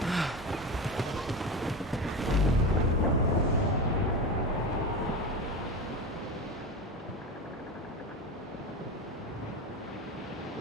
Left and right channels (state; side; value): normal; both; correlation 0.23